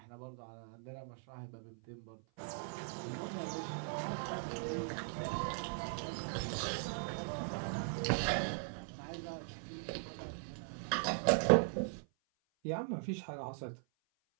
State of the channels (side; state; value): left; silent; 51 dB below the other